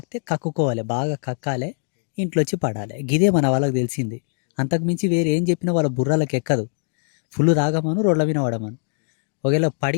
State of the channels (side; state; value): right; silent; digital silence